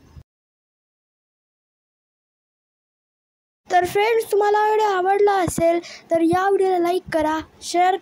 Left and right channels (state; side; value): identical; both; correlation 1.00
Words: तर फ्रेंड्स, तुम्हाला व्हिडिओ आवडला असेल तर या व्हिडिओला लाईक करा, शेअर